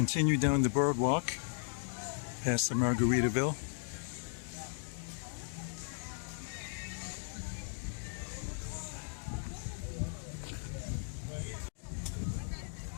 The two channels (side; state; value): right; silent; digital silence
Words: down the boardwalk past the Margaritaville.